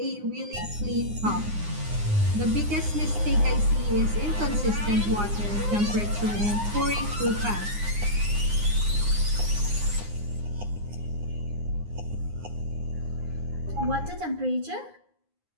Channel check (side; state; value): left; late; 9.7 ms